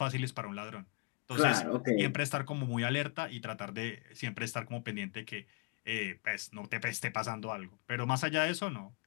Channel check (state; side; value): quieter; right; 29.9 dB